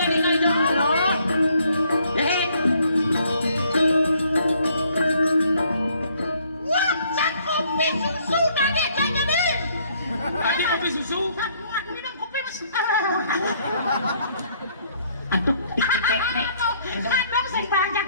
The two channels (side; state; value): both; inverted; correlation -0.65